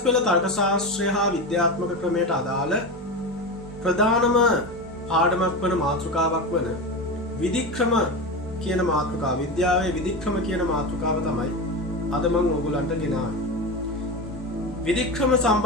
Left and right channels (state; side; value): normal; both; correlation 0.21